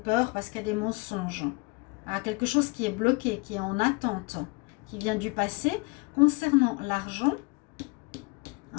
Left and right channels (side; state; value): right; quieter; 28.2 dB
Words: parce qu'il y a des mensonges, à quelque chose qui est bloqué, qui est en attente, qui vient du passé, concernant l'argent,